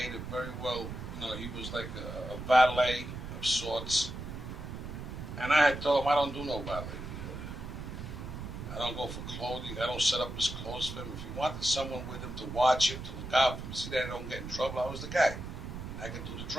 very well, he was like a valet of sorts. And I had told him, I don't do no valet. I don't go for clothing. I don't set up his clothes for him. If he wanted someone with him to watch him, to look out for him, see that I don't get in trouble, I was the guy. I could do the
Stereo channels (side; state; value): right; noise; rumble, 8 dB below the sound